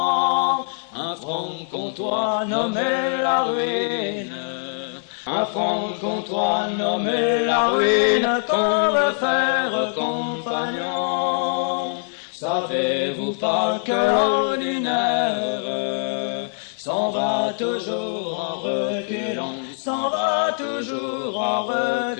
un franc-comtois nommé la ruine. Un franc-comtois nommé la ruine qu'on veut faire compagnon. Savez-vous pas que l'ordinaire s'en va toujours en reculant, s'en va toujours en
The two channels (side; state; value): right; silent; digital silence